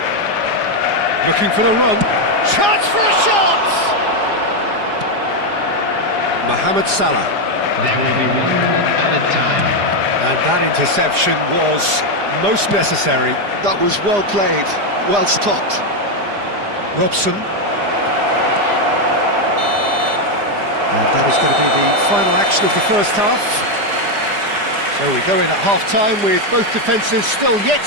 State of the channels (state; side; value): late; left; 4.9 ms